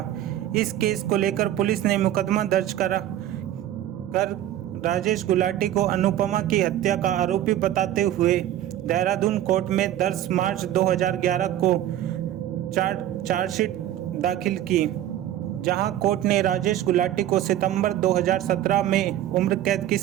इस केस को लेकर पुलिस ने मुकदमा दर्ज कर राजेश गुलाटी को अनुपमा की हत्या का आरोपी बताते हुए देहरादून कोर्ट में 10 मार्च 2011 को चार्जशीट दाखिल की, जहां कोर्ट ने राजेश गुलाटी को सितंबर 2017 में उम्र कैद की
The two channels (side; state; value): left; quieter; 12.5 dB